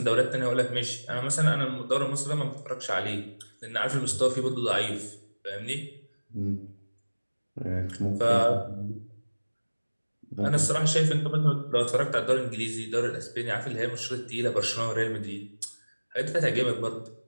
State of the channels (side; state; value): both; inverted; correlation -1.00